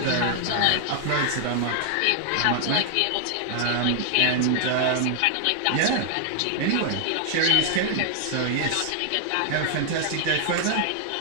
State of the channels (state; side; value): different; both; correlation 0.00